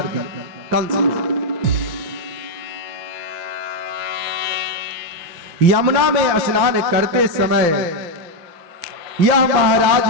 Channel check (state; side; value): late; left; 6.0 ms